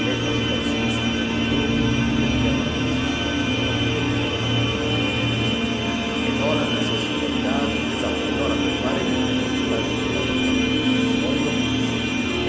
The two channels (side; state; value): both; identical; correlation 1.00